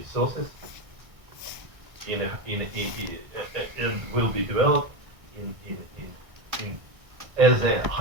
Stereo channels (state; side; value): late; left; 1.6 ms